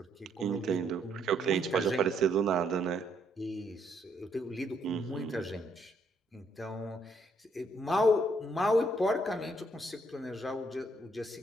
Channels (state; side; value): normal; both; correlation 0.71